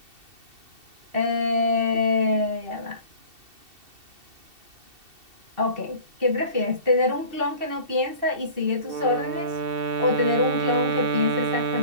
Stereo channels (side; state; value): left; late; 2.7 ms